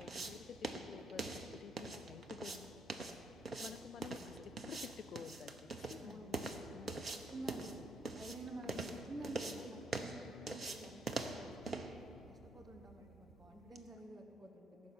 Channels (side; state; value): both; normal; correlation 0.73